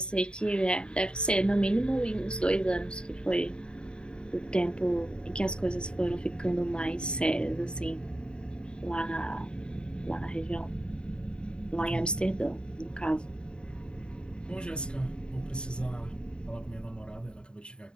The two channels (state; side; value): late; right; 0.051 ms